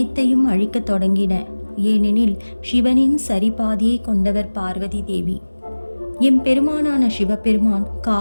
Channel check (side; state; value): both; inverted; correlation -1.00